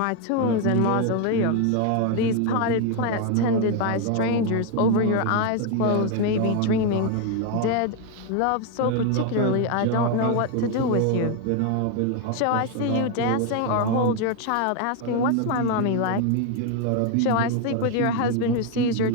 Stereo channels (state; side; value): different; both; correlation 0.01